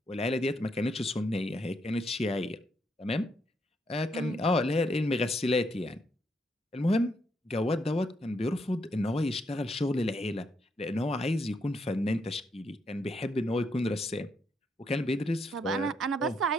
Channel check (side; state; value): both; normal; correlation 0.77